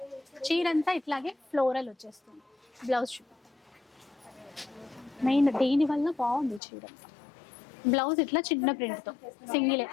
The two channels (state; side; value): drops out; right; at 6.6 s